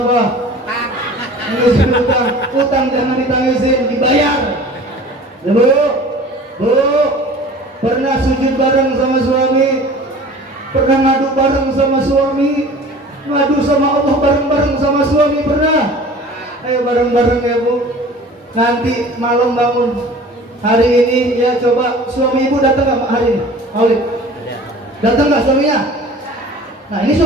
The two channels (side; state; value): both; normal; correlation 0.43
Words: Nangisin utang. Utang jangan ditangisin, dibayar. Ya Bu, pernah sujud bareng sama suami? Pernah ngadu bareng sama suami? Ngadu sama Allah bareng-bareng sama suami pernah? Ayo bareng-bareng ya Bu. Nanti malam bangun hari ini ya, coba suami ibu datang nggak hari ini? Aulid datang nggak suaminya? Nah ini